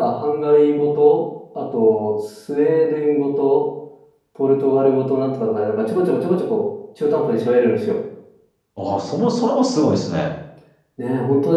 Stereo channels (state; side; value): identical; both; correlation 1.00